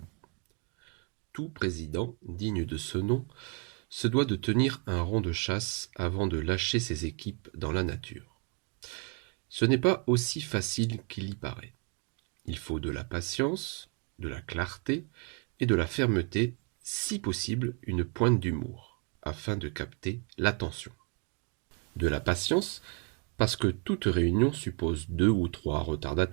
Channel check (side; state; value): left; quieter; 33.1 dB